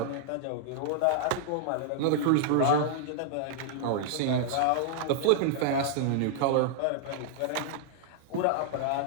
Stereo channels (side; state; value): both; different; correlation -0.01